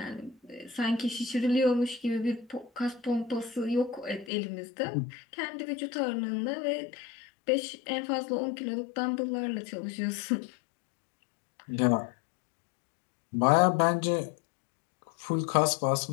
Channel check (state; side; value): drops out; right; at 4.3 s